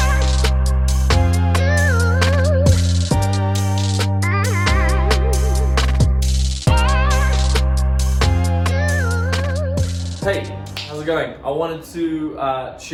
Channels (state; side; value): identical; both; correlation 1.00